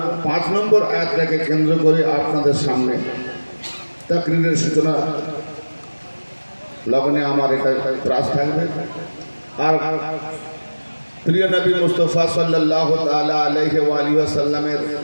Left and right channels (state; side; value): inverted; both; correlation -1.00